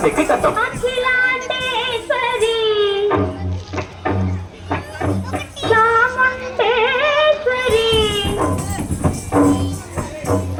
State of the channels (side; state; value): both; identical; correlation 1.00